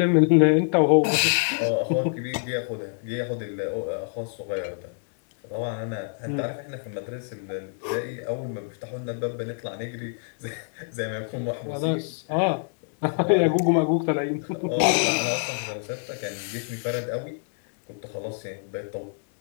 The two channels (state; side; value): silent; right; 61 dB below the other